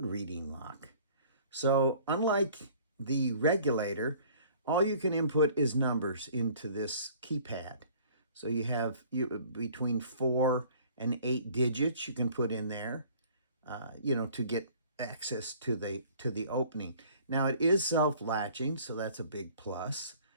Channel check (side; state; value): both; inverted; correlation -0.53